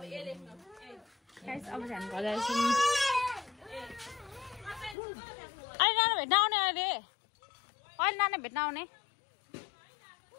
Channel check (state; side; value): drops out; right; at 5.0 s